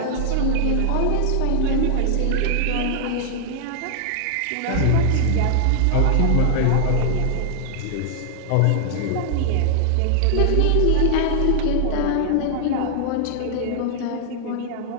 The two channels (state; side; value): different; both; correlation 0.00